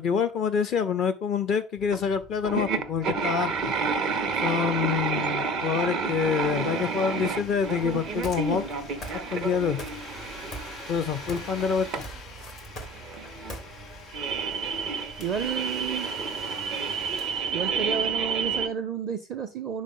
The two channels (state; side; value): normal; both; correlation 0.41